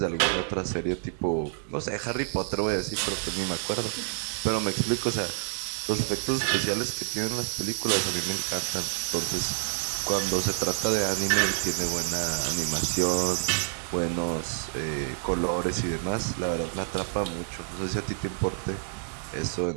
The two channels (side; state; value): left; silent; digital silence